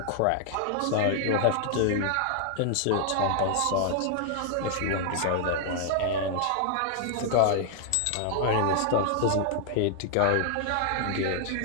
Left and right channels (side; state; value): both; different; correlation 0.00